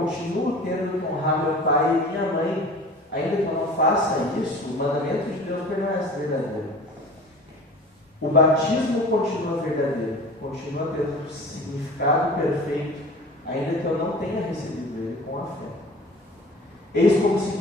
tendo que honrar meu pai e minha mãe, ainda que eu não faça isso, o mandamento de Deus permanece verdadeiro. O batismo continua verdadeiro, continua tendo significado perfeito, ainda que eu não tenha recebido ele com a fé. Eis como se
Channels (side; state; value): both; normal; correlation 0.41